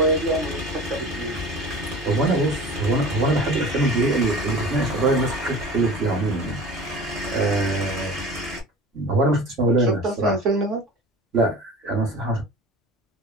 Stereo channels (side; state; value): both; normal; correlation 0.38